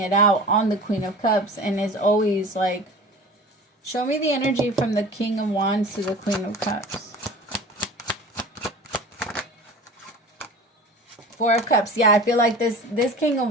it out on the Queen of Cups, and is always like, show me the energy from the King of Wands to the Queen of Cups. Four of Cups. Yeah, I feel like this King of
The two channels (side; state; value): both; normal; correlation 0.39